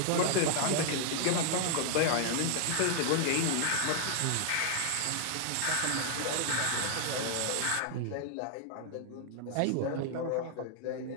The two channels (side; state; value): both; different; correlation -0.01